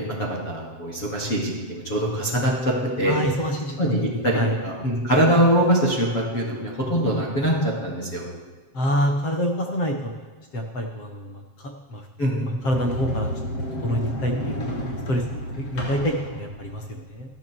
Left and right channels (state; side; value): late; right; 7.5 ms